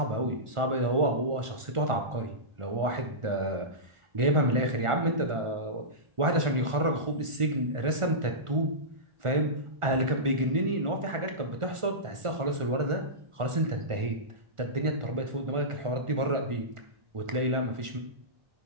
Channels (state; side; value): late; left; 1.4 ms